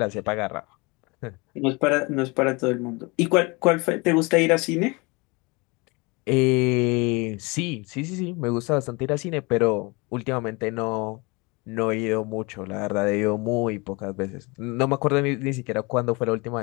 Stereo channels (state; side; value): quieter; right; 27.0 dB